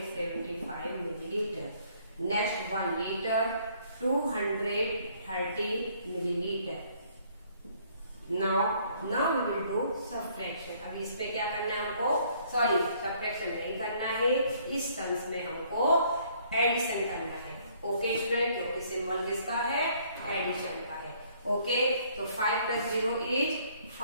milliliter. Next 1 liter, 230 milliliter. Now we will do subtraction. अब इस पे क्या करना है हमको? Sorry, subtraction नहीं करना है. इस टर्म्स में हमको एडिशन करना है. ओके स्टूडेंट, क्योंकि सिंबल किसका है? एडिशन का है. ओके, तो 5 plus 0 is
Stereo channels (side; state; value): both; inverted; correlation -0.63